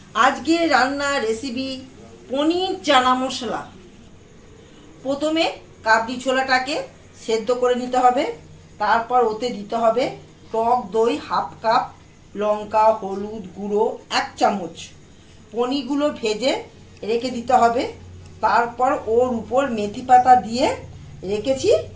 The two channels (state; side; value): identical; both; correlation 1.00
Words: আজকে রান্নার রেসিপি পনির চানা মশলা। প্রথমে কাবলি ছোলাটাকে সেদ্ধ করে নিতে হবে। তারপর ওতে দিতে হবে টক দই হাফ কাপ, লঙ্কা হলুদ গুঁড়ো 1 চামচ। পনিরগুলো ভেজে রেখে দিতে হবে। তারপর ওর উপর মেথি পাতা দিয়ে রেখেছি